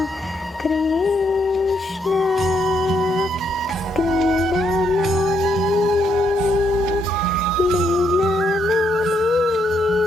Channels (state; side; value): normal; both; correlation 0.75